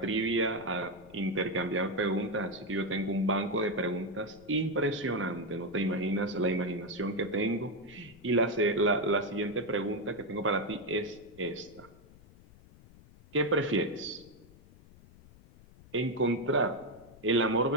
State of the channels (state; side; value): noise; left; rumble, 23 dB below the sound